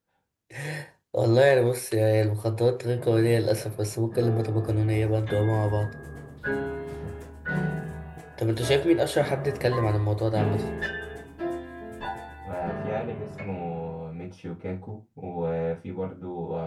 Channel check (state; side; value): identical; both; correlation 1.00